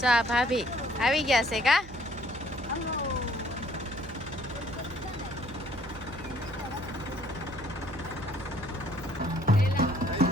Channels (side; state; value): right; noise; hum, 17 dB below the sound